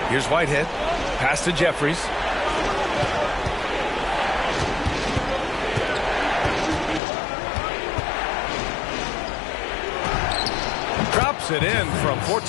Here's Whitehead. Pass to Jeffries. Drops it in from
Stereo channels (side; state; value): right; drops out; at 7.0 s